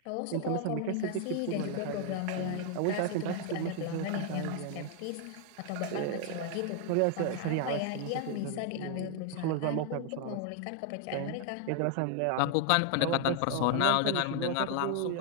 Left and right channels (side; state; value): both; different; correlation 0.00